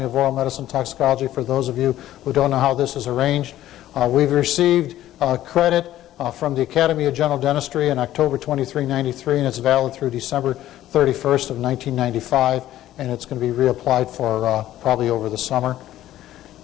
of Oral Medicine and Toxicology. For those of you who don't know how this is arranged, we've received credit from the Academy of General Dentistry in October 23, 93, and it's valid through December 31st of 1995, and it's going to be reapplied for probably over the summer.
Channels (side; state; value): right; quieter; 13.5 dB